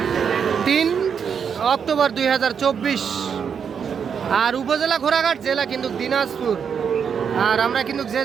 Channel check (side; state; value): left; quieter; 7.0 dB